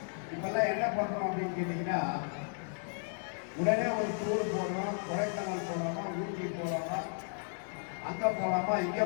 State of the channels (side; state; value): right; silent; 55 dB below the other